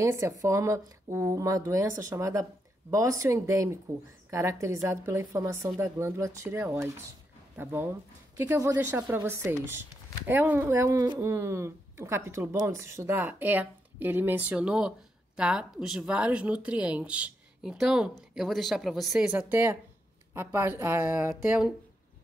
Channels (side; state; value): both; normal; correlation 0.82